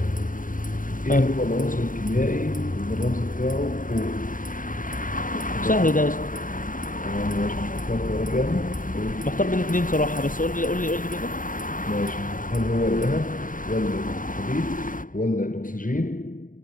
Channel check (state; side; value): late; right; 0.39 ms